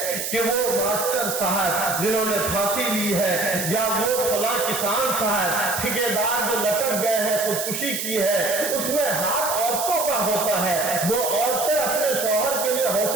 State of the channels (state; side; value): noise; right; hiss, 3 dB below the sound